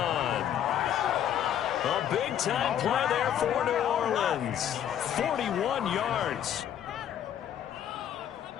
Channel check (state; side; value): quieter; right; 10.1 dB